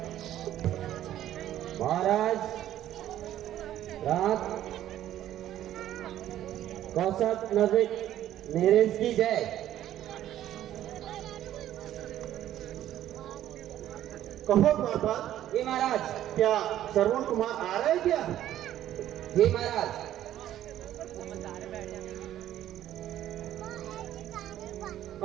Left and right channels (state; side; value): quieter; left; 12.3 dB